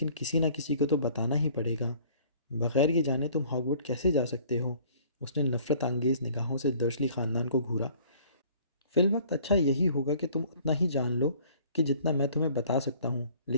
किसी ना किसी को तो बताना ही पड़ेगा। बगैर ये जाने तुम हॉगवर्ड कैसे जा सकते हो? उसने नफ़रत अंगेज़ निगाहों से दर्शली ख़ानदान को घूरा। फ़िलवक्त अच्छा यही होगा कि तुम उतना ही जान लो कि जितना मैं तुम्हें बता सकता हूँ,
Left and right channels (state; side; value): inverted; both; correlation -0.54